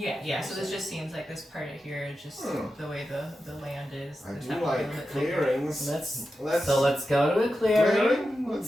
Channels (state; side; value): normal; both; correlation 0.91